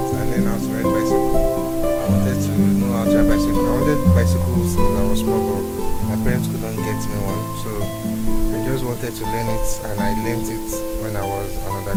I learned how to ride bicycle. I wanted to know how to ride bicycle. I wanted bicycles since I was small, but my parents couldn't get me one, so I just wanted to learn it, and I learned it when I was an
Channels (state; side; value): identical; both; correlation 1.00